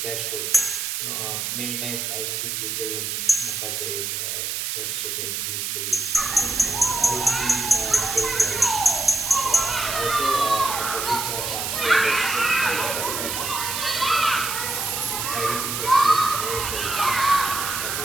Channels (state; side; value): noise; right; hiss, 2 dB below the sound